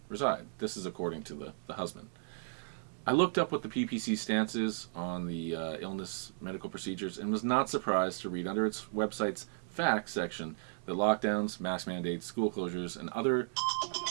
reside. This is according to the husband. I looked up what the PPC stance is on the illness medical procedures and was not surprised to read under its website's facts section that lockdowns, mask mandates, school closures, and other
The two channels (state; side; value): silent; left; digital silence